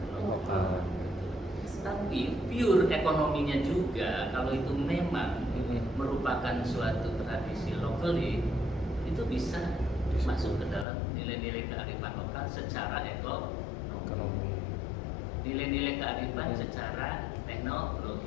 lokal. Tapi pure ekonominya juga kalau itu memang merupakan suatu tradisi lokal itu bisa masuk ke dalam nilai-nilai kearifan lokal secara nilai-nilai kearifan secara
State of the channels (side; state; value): right; drops out; at 10.9 s